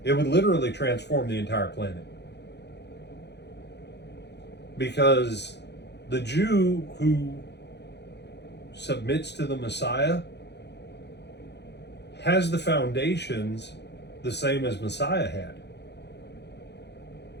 it would literally transform the entire planet. Because the Jew who submits to the Messiah has the foundations the same as Messiah had.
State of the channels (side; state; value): right; late; 0.50 ms